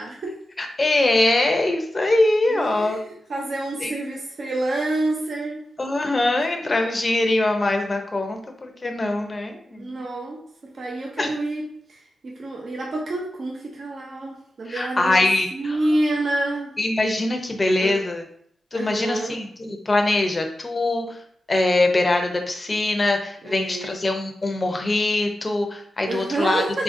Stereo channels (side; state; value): both; normal; correlation 0.92